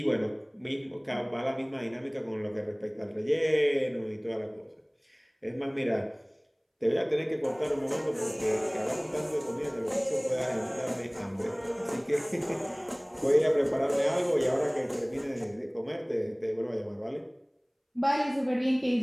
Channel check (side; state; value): both; identical; correlation 1.00